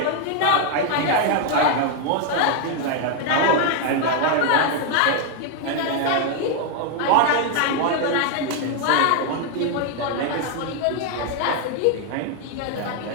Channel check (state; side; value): different; both; correlation 0.01